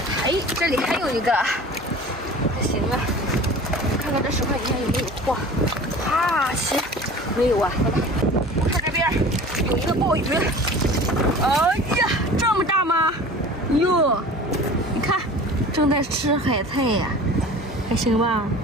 哎，这里还有一个。行啊，看看这10块底下有没有货。行，没有啊。我看这边有一个鲍鱼。哎呀，这么大吗？哟，你看，正在吃海菜呀，还行吧？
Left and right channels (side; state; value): both; normal; correlation 0.40